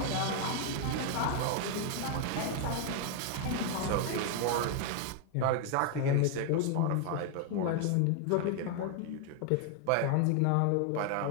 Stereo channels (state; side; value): different; both; correlation 0.00